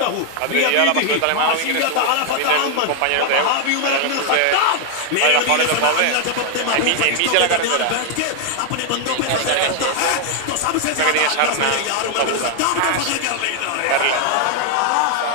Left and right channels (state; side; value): different; both; correlation 0.00